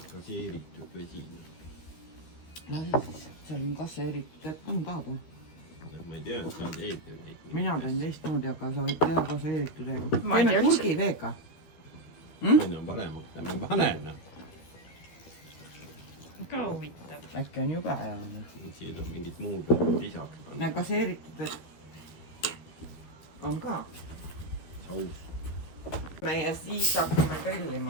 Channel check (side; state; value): right; late; 13 ms